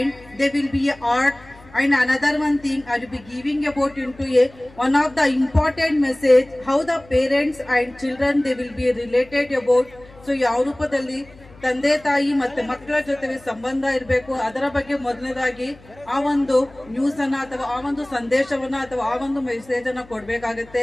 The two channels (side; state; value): left; noise; hum, 24 dB below the sound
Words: there will be a art. And another one thing I will be giving about into a one of the important message, how the parents and children they will be related about. So ಯಾವ ರೂಪದಲ್ಲಿ ತಂದೆ ತಾಯಿ ಮತ್ತೆ ಮಕ್ಕಳ ಜೊತೆಗೆ ಸಂಬಂಧ ಇರಬೇಕು, ಅದರ ಬಗ್ಗೆ ಮೊದಲನೇದಾಗಿ ಆ ಒಂದು ನ್ಯೂಸ್ ಅನ್ನ ಅಥವಾ ಆ ಒಂದು ಸಂದೇಶವನ್ನ ಅಥವಾ ಆ ಒಂದು ಮೆಸೇಜ್ ಅನ್ನ ಕೊಡ್ಬೇಕಾಗತ್ತೆ.